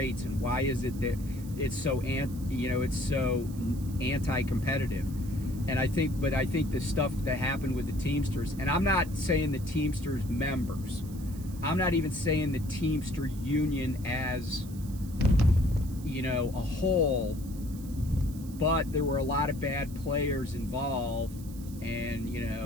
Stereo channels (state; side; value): noise; right; hiss, 20 dB below the sound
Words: and why is it that it's so anti-competitive? And I think the stuff that happened with the Teamsters, and I'm not saying the Teamsters members, I'm not even saying the Teamster union as a whole, but there were a lot of bad players involved, and